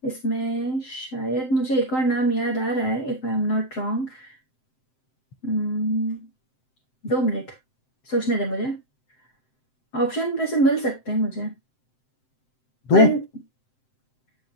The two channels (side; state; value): right; late; 7.7 ms